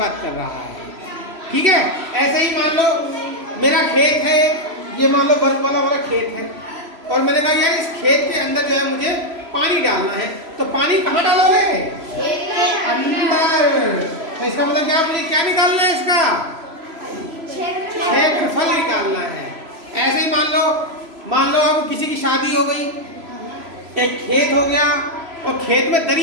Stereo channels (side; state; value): left; late; 3.0 ms